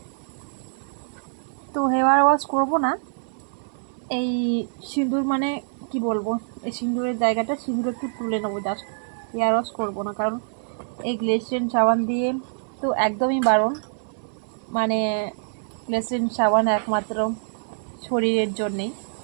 তো হেয়ার ওয়াশ করবো না, এই সিঁদুর কি বলবো, এই সিঁদুরের জায়গাটা সিঁদুর একটু তুলে নেবো জাস্ট। হেয়ার ওয়াশ করবো না, কারণ এই গ্লিসারিন সাবান দিয়ে তো একদমই বারণ। গ্লিসারিন সাবান একমাত্র শরীরের জন্যেই,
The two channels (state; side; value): silent; left; 62 dB below the other